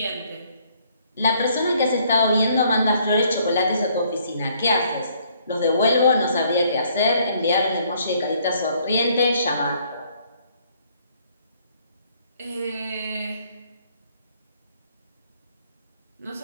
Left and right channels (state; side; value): inverted; both; correlation -0.65